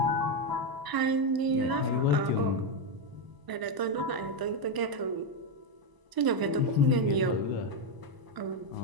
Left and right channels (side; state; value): left; late; 1.0 ms